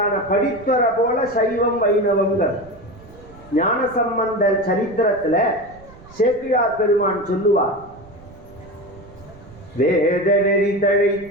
படித்துற போல சைவம் வைணவம்ங்கிறது. ஞானசம்பந்தர் சரித்திரத்துல சேக்கிழார் பெருமான் சொல்லுவார், வேத நெறி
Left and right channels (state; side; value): noise; right; rumble, 21 dB below the sound